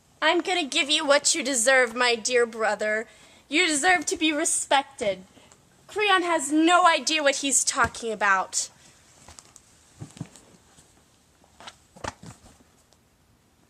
I'm gonna give you what you deserve, my dear brother. You deserve to be respected. Creon has no idea what he's talking about.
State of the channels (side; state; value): both; identical; correlation 1.00